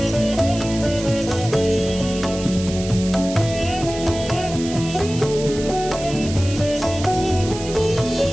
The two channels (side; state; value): right; noise; hiss, 12 dB below the sound